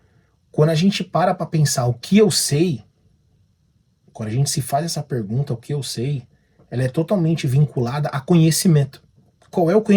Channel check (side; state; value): both; identical; correlation 1.00